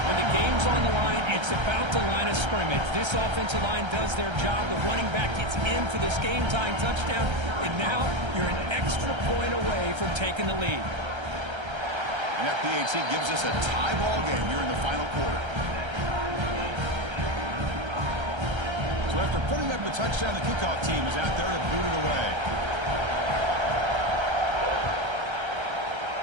When the game's on the line, it's about the line of scrimmage. This offensive line does their job. The running back gets in for this game-tying touchdown, and now you're an extra point away from taking the lead. And FPHC gives us a tie ball game here in the final quarter. So after putting up the touchdown, the kickoff team is out there to boot it away.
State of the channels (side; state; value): left; late; 1.3 ms